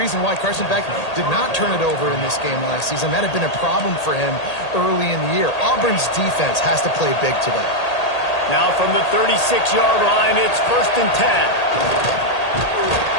why Carson Beck did not turn it over in this game last season. That had been a problem for him early in the year. Auburn's defense has to play big today. Now from the 36-yard line, it's 1st and 10.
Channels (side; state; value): right; late; 1.8 ms